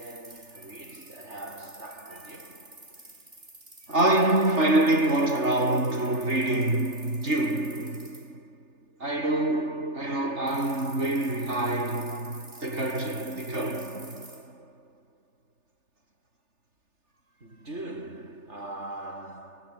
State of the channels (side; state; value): left; late; 3.4 ms